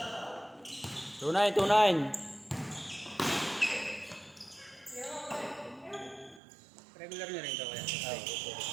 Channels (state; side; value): drops out; left; at 6.4 s